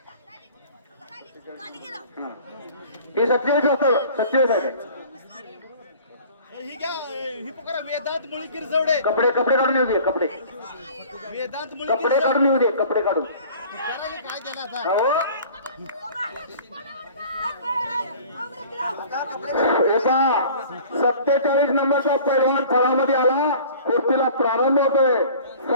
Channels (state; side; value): inverted; both; correlation -0.46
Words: हे 27 होतं. 27 आहे. वेदांत मुळी गिरजवडे कपडे काढून येऊ दे. कपडे काढून येऊ दे. कपडे काढून काय केला आता. 47 नंबरचा पैलवान फळामध्ये आला. कुस्तीला प्रारंभ होतोय.